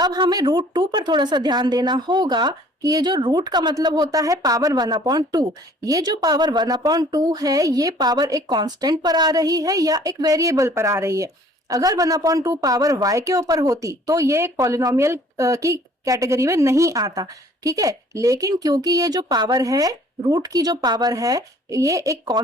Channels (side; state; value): both; normal; correlation 0.55